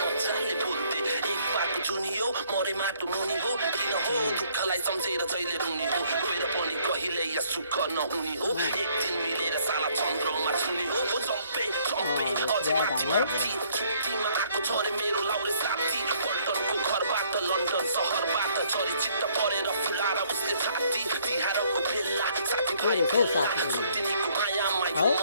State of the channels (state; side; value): inverted; both; correlation -0.64